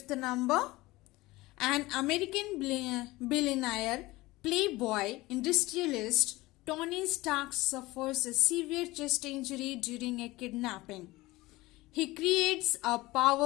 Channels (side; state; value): right; quieter; 19.9 dB